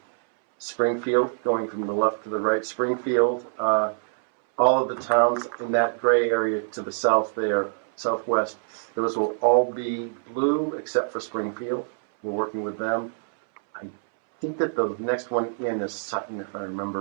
Springfield, going from the left to the right, Springfield, all of the towns in that gray area to the south there, southwest, those will all be blue except for Springfield. We're working with them. I think that the next one in is Sutton, if I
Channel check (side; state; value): left; silent; 62 dB below the other